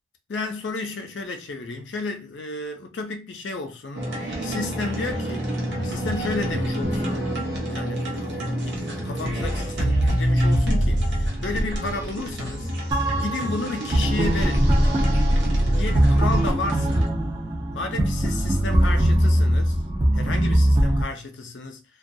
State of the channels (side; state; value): both; normal; correlation 0.87